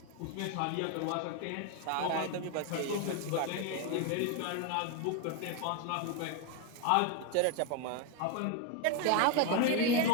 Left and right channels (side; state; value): both; different; correlation 0.01